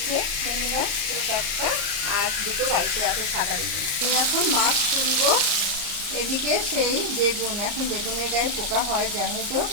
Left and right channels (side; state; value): left; late; 34 ms